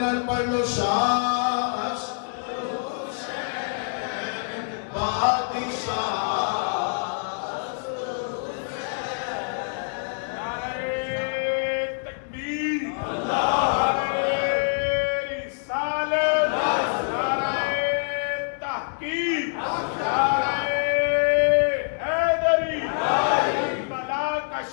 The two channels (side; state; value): right; silent; digital silence